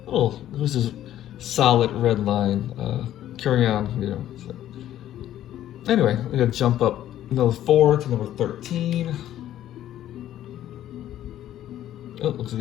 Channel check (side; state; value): right; quieter; 12.3 dB